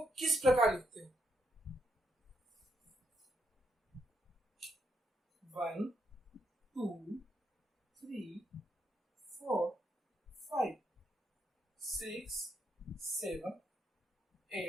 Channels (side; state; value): both; normal; correlation 0.78